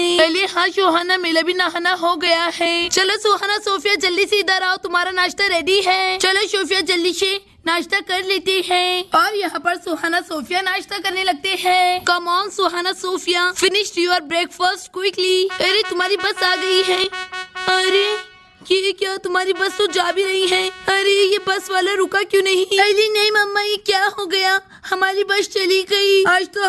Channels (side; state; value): both; identical; correlation 1.00